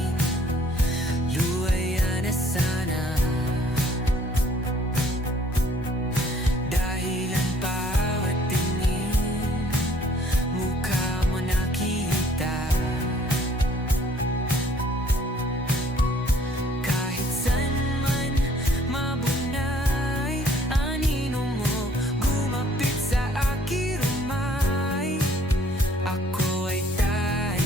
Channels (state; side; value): normal; both; correlation 0.59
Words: luwaya na sana. Dahil ang bawat tingin, mukha mo nakita. Kahit saan man mabunay, anino mo gumapit sa aking rumay. Ako ay